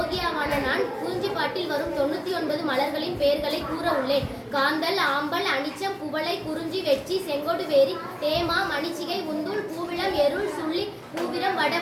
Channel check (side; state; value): both; identical; correlation 1.00